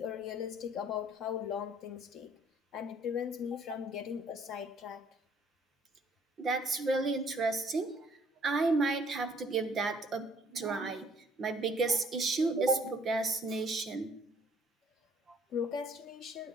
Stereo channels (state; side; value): normal; both; correlation 0.60